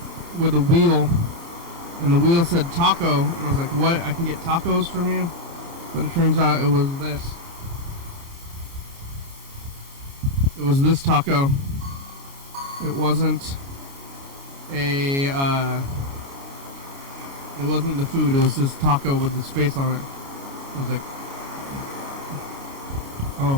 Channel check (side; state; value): left; late; 29 ms